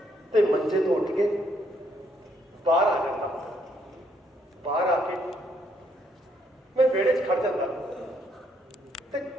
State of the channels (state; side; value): normal; both; correlation 0.71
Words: ਤੇ ਮੰਜੇ ਤੋਂ ਉੱਠ ਕੇ ਬਾਹਰ ਆ ਜਾਂਦਾ। ਬਾਹਰ ਆ ਕੇ ਮੈਂ ਵਿਹੜੇ 'ਚ ਖੜ ਜਾਂਦਾ ਤੇ